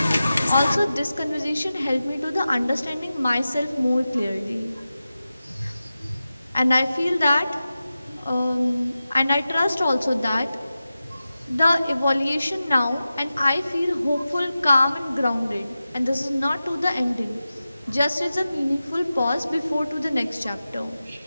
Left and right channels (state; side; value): inverted; both; correlation -0.94